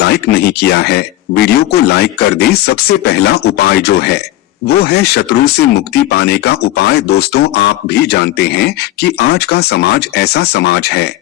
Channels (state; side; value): quieter; right; 15.2 dB